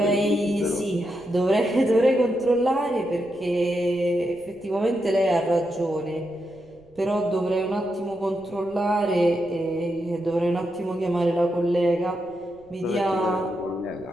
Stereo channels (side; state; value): right; noise; rumble, 29 dB below the sound